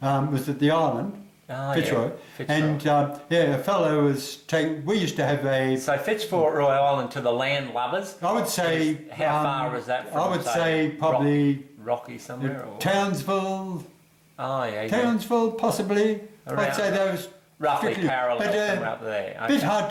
was at the island. Fitzroy. And a fellow was we used to have a... So Fitzroy Island to the land lovers? I would say... How far was that from? I would say probably... Rocky somewhere? Townsville. Oh, yeah. Townsville, possibly. I'd say those... Roughly parallel somewhere up there. A bit hard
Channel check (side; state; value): both; identical; correlation 1.00